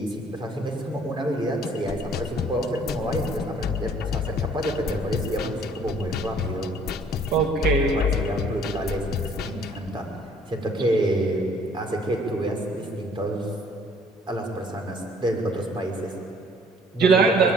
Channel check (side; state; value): both; normal; correlation 0.57